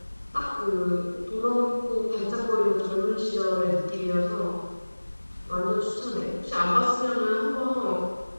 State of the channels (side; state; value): both; inverted; correlation -1.00